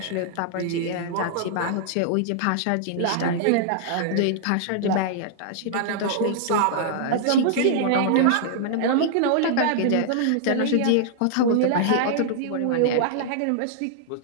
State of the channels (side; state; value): both; different; correlation -0.01